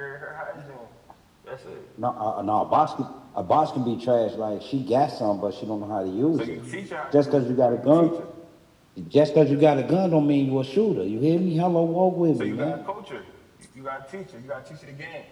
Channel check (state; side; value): identical; both; correlation 1.00